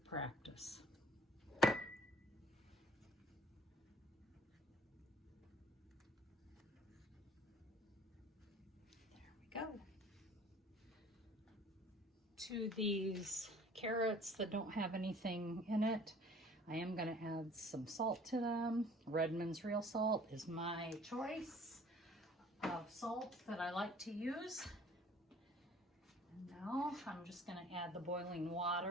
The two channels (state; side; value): normal; both; correlation 0.52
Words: practice. There we go. To these carrots that don't have anything in it, I am going to add some salt to them. Redmond's real salt is my choice of salt that I like to use. And now I'm just going to add the boiling